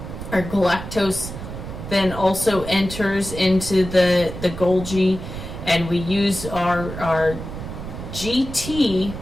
Our galactose then also enters into the Golgi, and we use our GT,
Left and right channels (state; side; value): noise; right; rumble, 9 dB below the sound